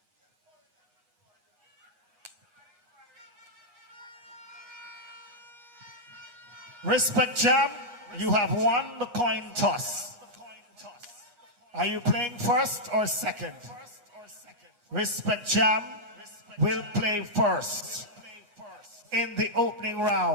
Rispec Jam, you have won the coin toss. Are you playing first or second? Rispec Jam will play first in the opening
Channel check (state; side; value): late; left; 9.6 ms